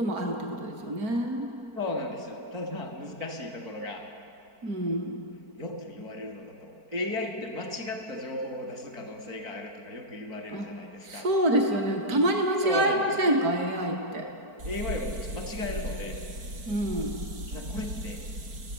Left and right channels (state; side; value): late; left; 4.5 ms